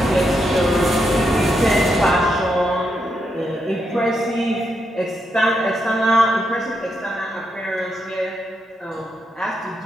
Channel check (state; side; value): normal; both; correlation 0.81